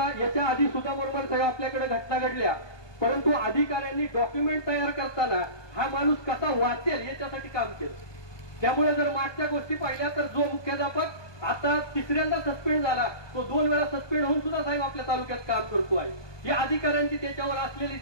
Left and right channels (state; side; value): late; right; 1.2 ms